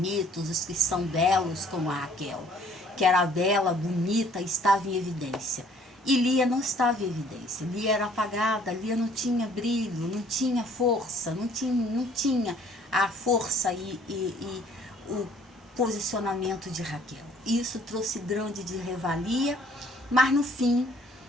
os que são belos, como a Raquel, que era bela, bonita, estava em evidência. E Lia não estava em evidência. Lia era apagada, Lia não tinha brilho, não tinha força, não tinha a força e o posicionamento de Raquel. Isso trouxe grande de revalia, mas no fim,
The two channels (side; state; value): both; normal; correlation 0.58